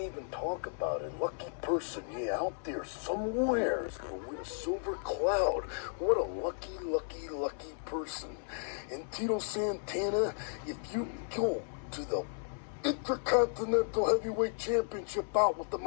talk about it. Lucky person, yeah, out there somewhere is gonna win a silver cloud. What a lucky person. And Tito Santana, if you go to the Intercontinental Heavyweight Championship bout with the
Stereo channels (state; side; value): silent; right; 55 dB below the other